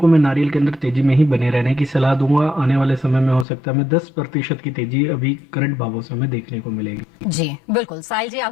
मैं नारियल के अंदर तेजी में ही बने रहने की सलाह दूंगा। आने वाले समय में हो सकता है हमें 10% की तेजी अभी करंट भावों से हमें देखने को मिलेगी। जी बिल्कुल, साहिल जी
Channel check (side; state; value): right; drops out; at 3.5 s